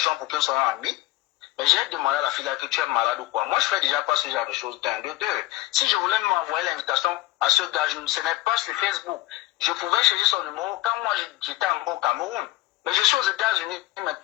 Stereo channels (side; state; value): right; quieter; 17.9 dB